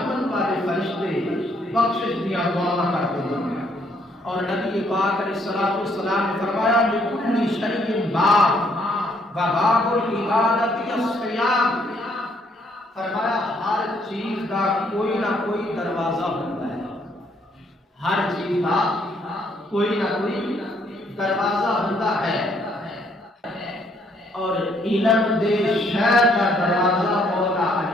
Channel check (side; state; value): both; normal; correlation 0.68